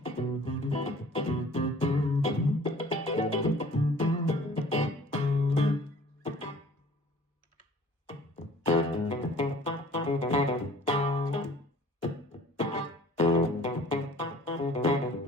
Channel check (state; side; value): normal; both; correlation 0.50